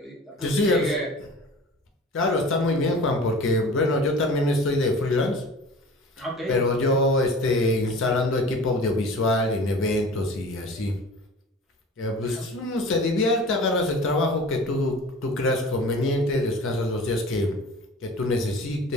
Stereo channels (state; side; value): normal; both; correlation 0.41